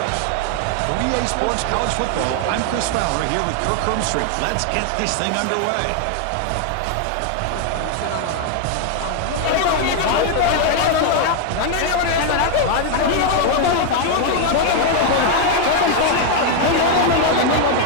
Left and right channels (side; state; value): both; different; correlation 0.00